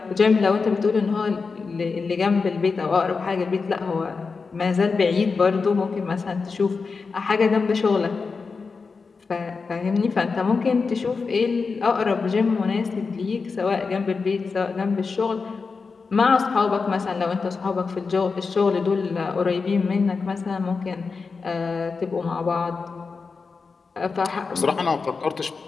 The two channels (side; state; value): right; quieter; 4.7 dB